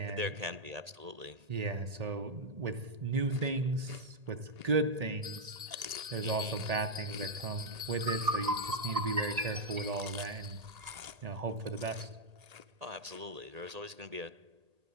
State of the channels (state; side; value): late; left; 1.8 ms